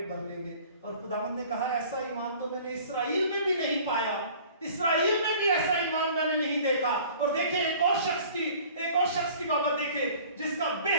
भर लेंगे। और खुदावंद ने कहा, ऐसा ईमान तो मैंने इस्राएल में भी नहीं पाया, इस्राएल में भी ऐसा ईमान मैंने नहीं देखा। और देखे एक और शख्स की बाबत देखे जिसका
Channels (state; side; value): inverted; both; correlation -0.48